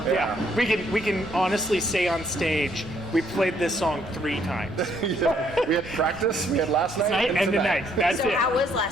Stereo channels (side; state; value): both; normal; correlation 0.68